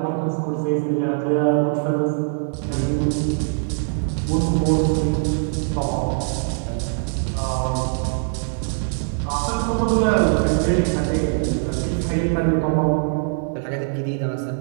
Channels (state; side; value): silent; left; digital silence